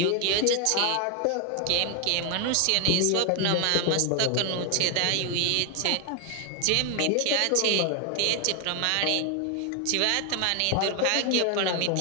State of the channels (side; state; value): both; different; correlation 0.00